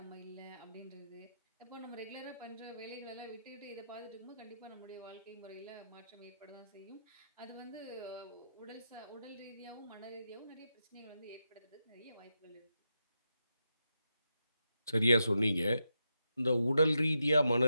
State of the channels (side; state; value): both; inverted; correlation -0.86